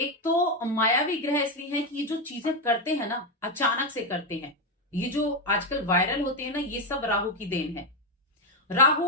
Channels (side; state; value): both; normal; correlation 0.07